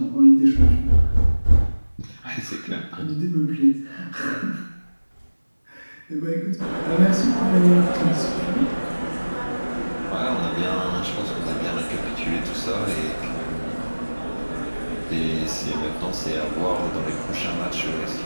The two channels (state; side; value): inverted; both; correlation -1.00